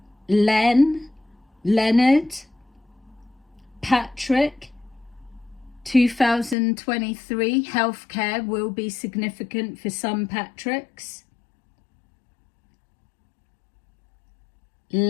Len, Leonard, Patrick. 2023 healthcare will be significant for some Patricks.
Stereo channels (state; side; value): drops out; right; at 6.6 s